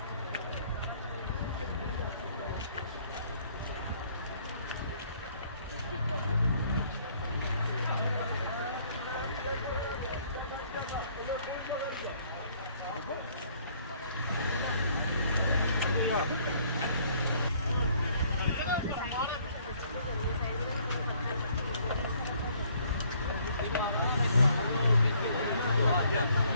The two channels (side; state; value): both; inverted; correlation -0.62